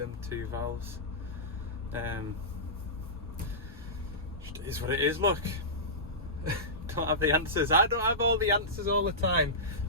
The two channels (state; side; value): normal; both; correlation -0.17